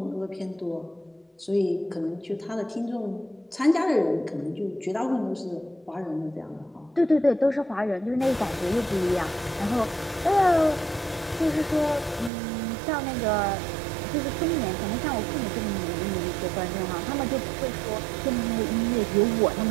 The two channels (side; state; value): left; drops out; at 12.3 s